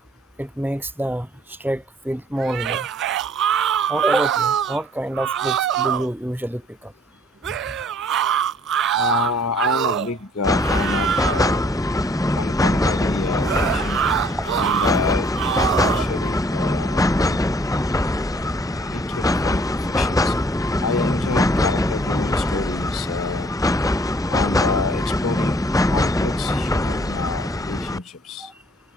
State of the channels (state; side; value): normal; both; correlation 0.59